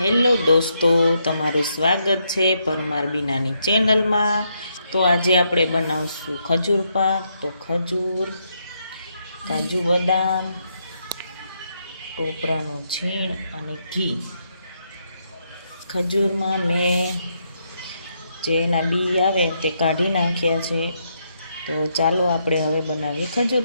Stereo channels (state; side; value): inverted; both; correlation -0.78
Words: દોસ્તો, તમારું સ્વાગત છે પરમાર બીનાની ચેનલમાં। તો આજે આપણે બનાવશું ખજૂર પાક। તો ખજૂર, કાજુ બદામ, ટોપરાનું છીણ અને ઘી। ખજૂરમાં મેં જે એના બી આવે તે કાઢી નાખ્યા છે। તો ચાલો આપણે હવે બનાવીએ ખજૂર